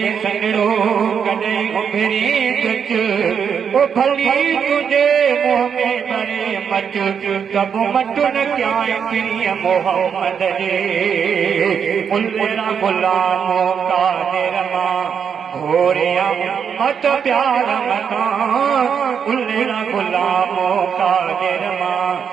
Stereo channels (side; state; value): left; quieter; 7.2 dB